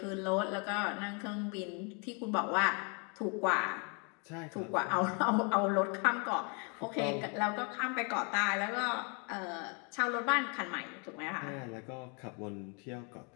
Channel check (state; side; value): quieter; right; 35.4 dB